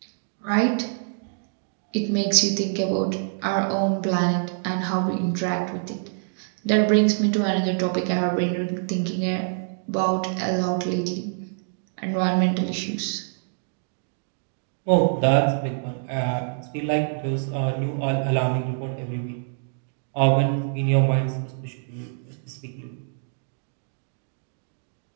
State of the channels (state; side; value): silent; left; digital silence